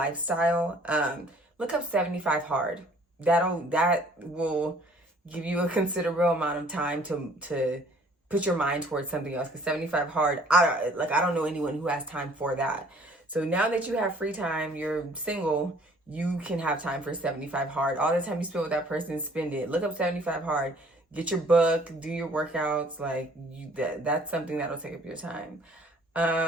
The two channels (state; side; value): normal; both; correlation 0.56